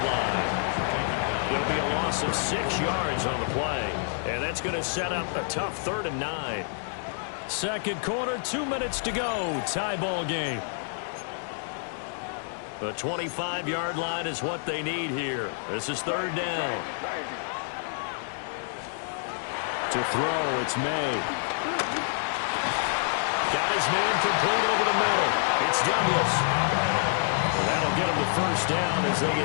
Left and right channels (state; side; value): silent; right; digital silence